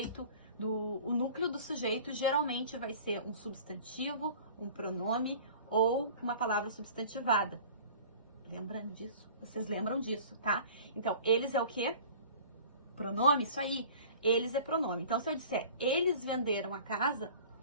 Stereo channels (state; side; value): inverted; both; correlation -0.44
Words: geralmente vai ser um substantivo, um pronome ou uma palavra substantivada. Lembram disso? Vocês lembram disso, tá? Então, eles é o quê? Pronome, isso aí. Eles é pronome. Então, se eu disser eles venderam a casa,